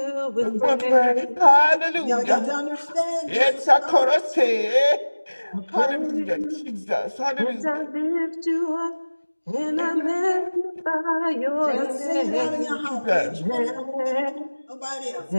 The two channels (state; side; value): inverted; both; correlation -1.00